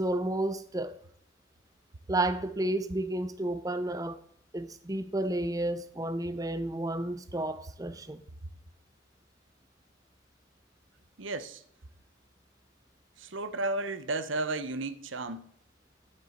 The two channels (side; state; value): both; normal; correlation 0.47